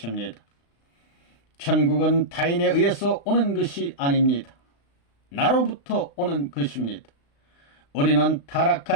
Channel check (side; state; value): right; late; 35 ms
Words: 천국은 타인에 의해서 오는 것이 아닙니다. 나로부터 오는 것입니다. 우리는